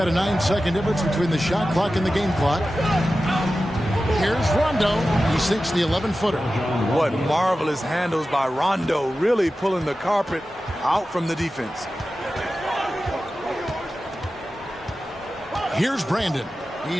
a 9-second difference between the shot clock and the game clock. Here's Rondo. He sinks the 11-footer. What marvelous handles by Rondo, really pulling the carpet out from the defense. Here's Brandon.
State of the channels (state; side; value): normal; both; correlation 0.94